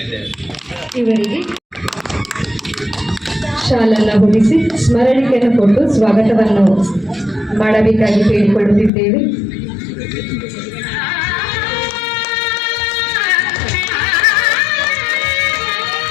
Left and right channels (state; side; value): drops out; right; at 8.9 s